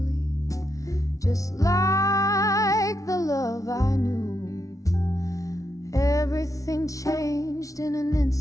just like the love I knew. Everything changed in an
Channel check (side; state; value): right; late; 0.16 ms